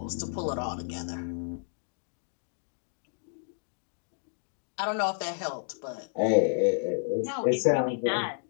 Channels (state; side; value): silent; right; digital silence